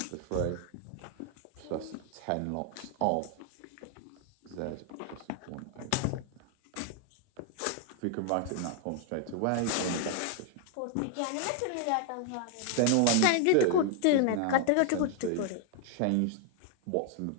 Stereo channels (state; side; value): different; both; correlation 0.00